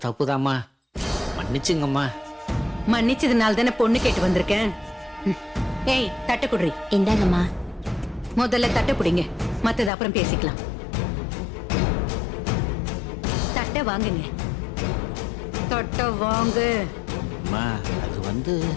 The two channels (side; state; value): right; drops out; at 9.9 s